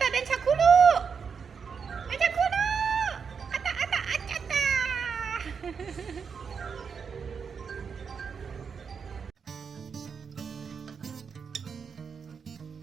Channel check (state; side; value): quieter; left; 6.2 dB